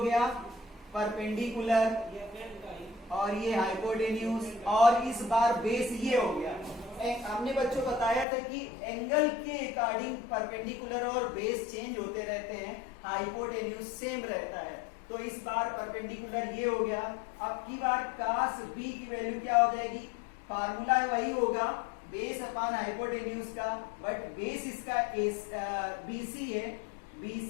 परपेंडिकुलर और ये हाइपोटेन्यूज और इस बार बेस ये हो गया। हमने बच्चों बताया था कि एंगल के अकॉर्डिंग परपेंडिकुलर और बेस चेंज होते रहते हैं, हाइपोटेन्यूज सेम रहता है। तो इस बार परपेंडिकुलर ये हो गया। अब की बार cos b की वैल्यू क्या हो जाएगी, फार्मूला वही होगा बेस अपॉन हाइपोटेन्यूज का, बट बेस इसका BC है,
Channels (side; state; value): right; drops out; at 8.2 s